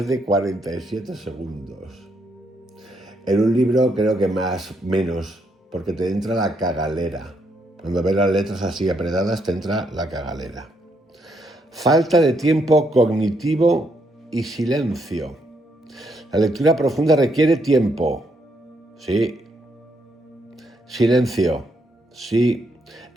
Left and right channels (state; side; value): normal; both; correlation 0.76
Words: de 47 segundos. En un libro creo que menos, porque te entra la cagalera. Cuando ves las letras así apretadas te entra la cagalera. Falta de tiempo cognitivo y silencio. La lectura profunda requiere tiempo. Sí. Silencio. Sí.